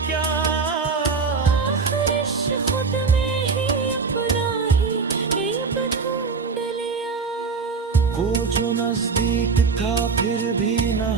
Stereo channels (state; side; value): quieter; left; 4.9 dB